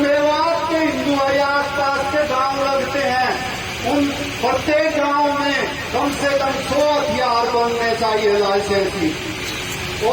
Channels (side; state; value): both; identical; correlation 1.00